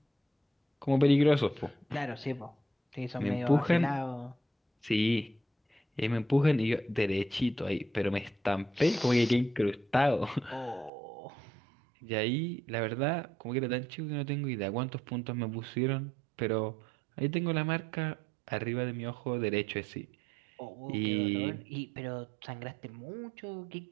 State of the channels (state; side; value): drops out; left; at 10.9 s